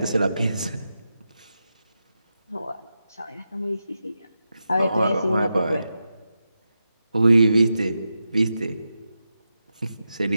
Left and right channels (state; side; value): inverted; both; correlation -0.89